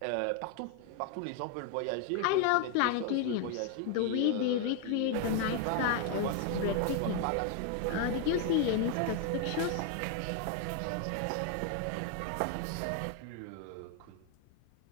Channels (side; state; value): both; different; correlation 0.01